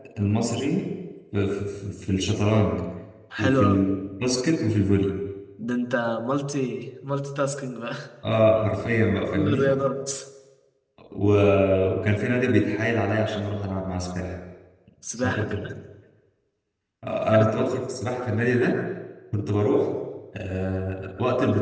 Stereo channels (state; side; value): identical; both; correlation 1.00